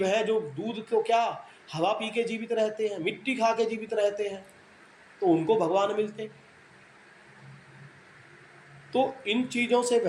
हैं जो दूध को क्या हवा पी के जीवित रहते हैं, मिट्टी खा के जीवित रहते हैं, तो उनको भगवान मिलते। तो इन चीज़ों से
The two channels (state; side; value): identical; both; correlation 1.00